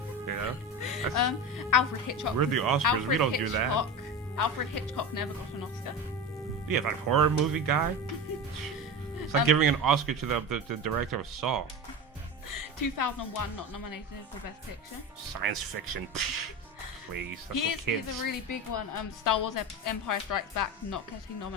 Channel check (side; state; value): both; normal; correlation 0.25